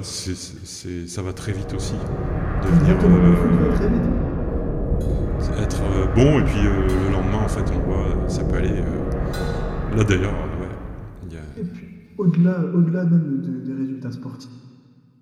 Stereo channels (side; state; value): both; identical; correlation 1.00